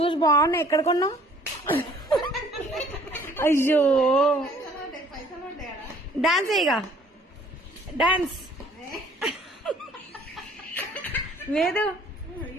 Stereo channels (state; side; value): normal; both; correlation 0.57